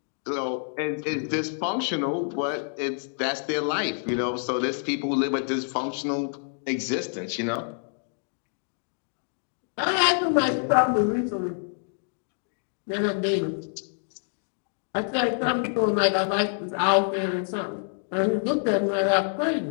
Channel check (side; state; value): right; silent; 60 dB below the other